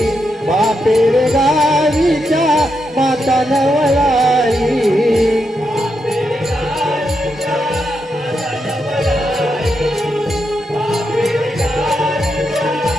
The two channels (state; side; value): normal; both; correlation 0.83